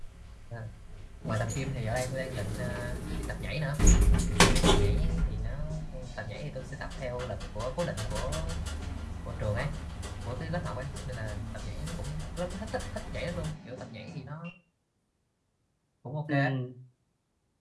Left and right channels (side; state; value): both; identical; correlation 1.00